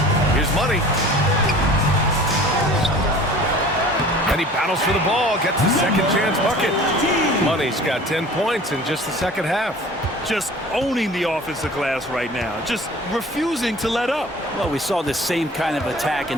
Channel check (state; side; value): normal; both; correlation 0.45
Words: Here's Money. And he battles for the ball, gets the second chance bucket. Money's got 10 points in just the second half. Just owning the offensive glass right now. Just refusing to let up. Well, we saw this same kind of attack